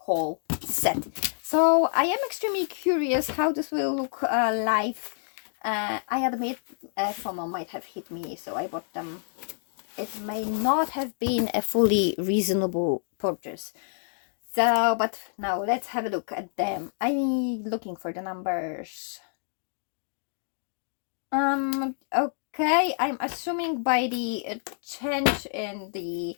set. So I am extremely curious how this will look live. I admit FOMO might have hit me, so I bought them. It may not have been a fully reasonable purchase. So, but now let's have a look at them. I'm looking for the numbers. Okay, I'm assuming by the change in the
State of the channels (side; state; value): right; silent; digital silence